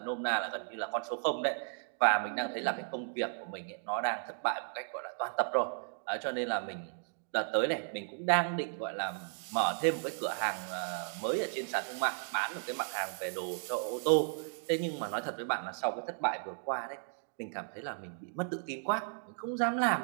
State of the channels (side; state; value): left; silent; digital silence